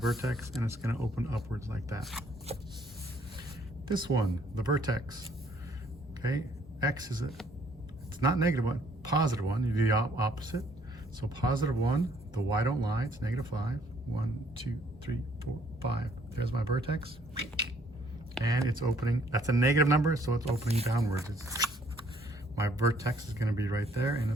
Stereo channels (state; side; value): normal; both; correlation 0.63